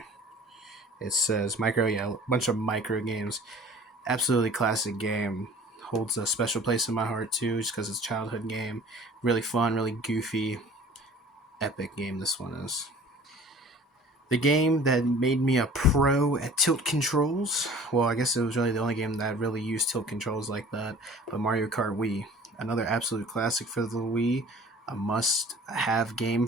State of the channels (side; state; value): both; normal; correlation 0.47